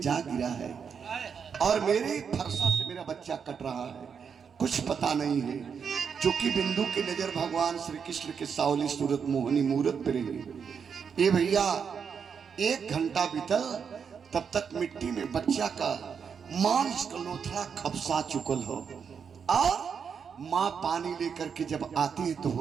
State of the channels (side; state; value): left; quieter; 6.6 dB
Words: जा गिरा है और मेरे फरसा से मेरा बच्चा कट रहा है। कुछ पता नहीं है, क्योंकि बिंदु की नजर भगवान श्री कृष्ण के सावली सूरत मोहनी मूरत पे रही। ये भैया 1 घंटा बीतल, तब तक मिट्टी में बच्चा का मांस का लोथड़ा खपसा चुकल हो, और माँ पानी लेकर के जब आती है तो